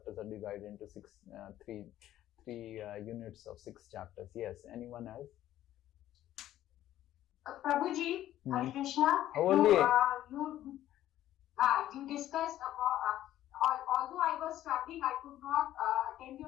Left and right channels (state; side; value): quieter; right; 13.1 dB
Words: are divided into three units of 6 chapters. Yes, anyone else? Prabhuji, Hare Krishna. You discussed about. Although I was traveling, I could not attend